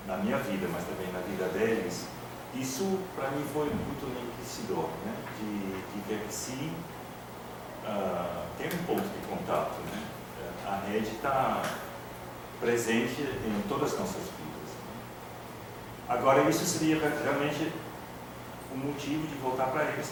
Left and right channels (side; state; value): both; identical; correlation 1.00